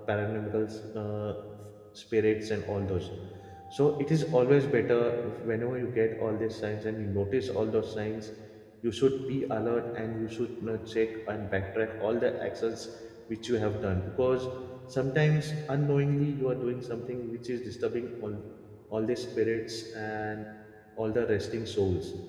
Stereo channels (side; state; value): both; identical; correlation 1.00